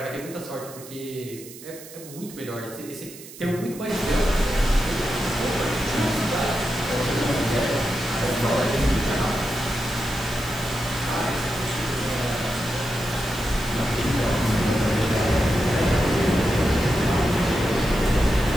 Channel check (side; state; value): right; noise; hiss, 16 dB below the sound